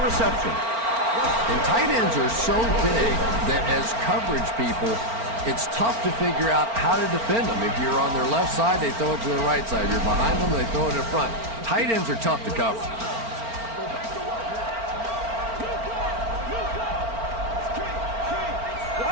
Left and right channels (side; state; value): left; late; 4.4 ms